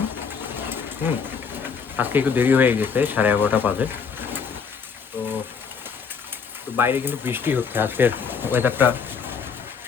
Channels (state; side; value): quieter; right; 6.0 dB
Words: হুম আজকে একটু দেরি হয়ে গেছে, 11:30 বাজে। তো তো বাইরে কিন্তু বৃষ্টি হচ্ছে, আজকের ওয়েদারটা